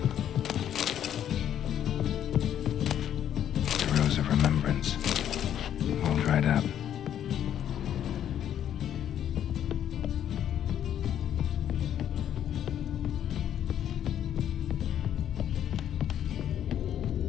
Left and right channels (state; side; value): quieter; right; 10.2 dB